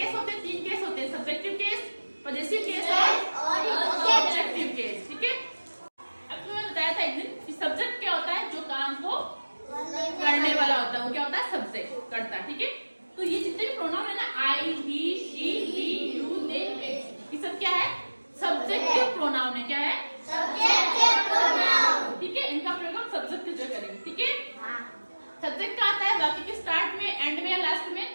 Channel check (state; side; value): inverted; both; correlation -1.00